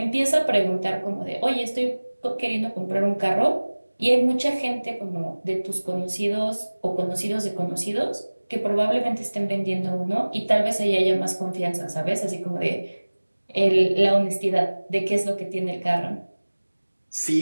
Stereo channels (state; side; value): inverted; both; correlation -1.00